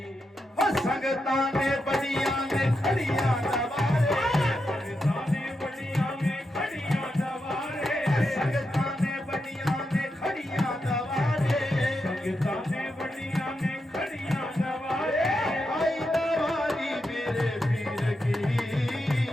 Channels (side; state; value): both; normal; correlation 0.86